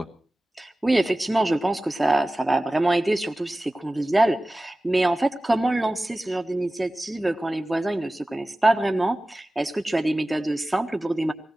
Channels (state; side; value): normal; both; correlation 0.97